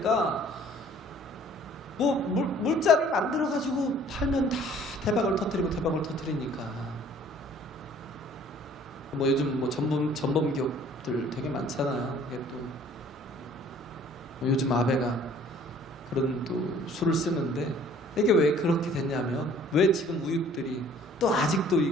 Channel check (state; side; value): normal; both; correlation 0.54